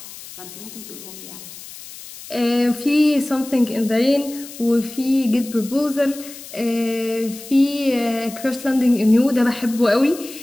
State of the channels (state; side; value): noise; left; hiss, 15 dB below the sound